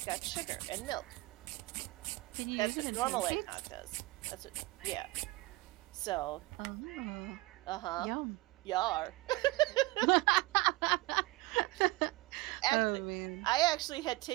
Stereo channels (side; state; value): left; quieter; 20.9 dB